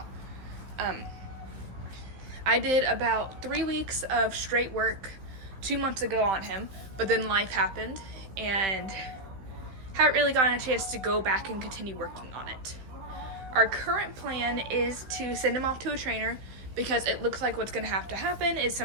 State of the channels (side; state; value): left; late; 15 ms